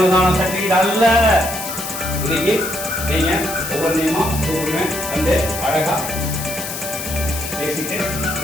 சர்டிஃபிகேட் அல்ல. இன்னைக்கு நீங்க ஒவ்வொரு நியமா கூப்பிடுவேன் வந்து அழகா பேசிட்டு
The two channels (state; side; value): noise; left; hiss, 7 dB below the sound